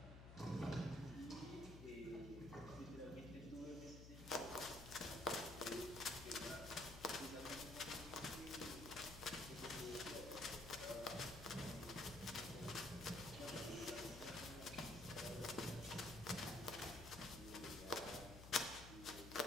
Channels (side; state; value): left; noise; hum, 11 dB below the sound